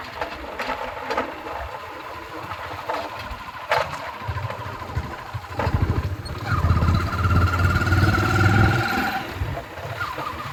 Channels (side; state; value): both; identical; correlation 1.00